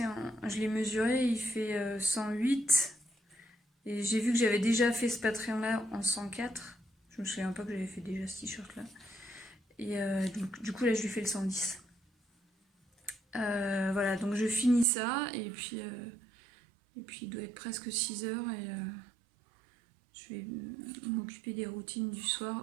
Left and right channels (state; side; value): drops out; left; at 14.9 s